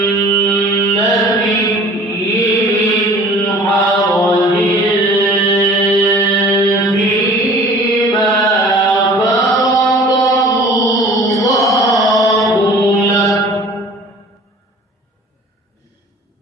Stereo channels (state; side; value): normal; both; correlation 0.46